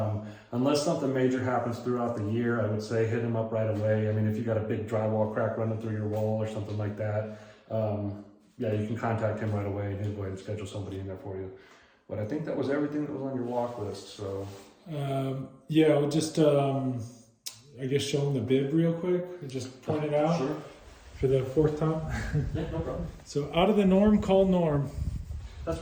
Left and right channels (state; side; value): identical; both; correlation 1.00